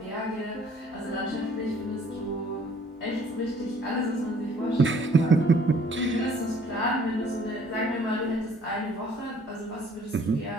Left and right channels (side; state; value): both; normal; correlation 0.57